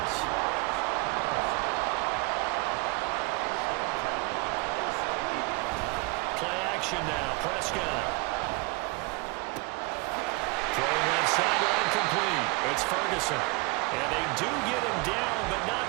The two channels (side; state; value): left; quieter; 27.4 dB